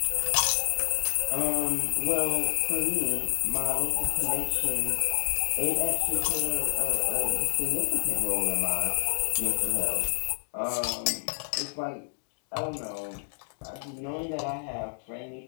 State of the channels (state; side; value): silent; right; digital silence